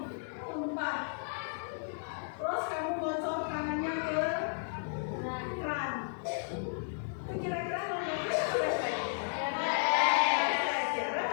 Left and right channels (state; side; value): silent; right; 55 dB below the other